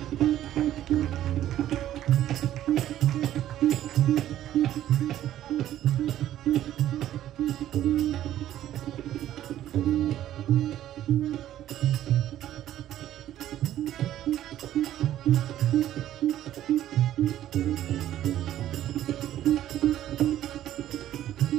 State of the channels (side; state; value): left; quieter; 12.5 dB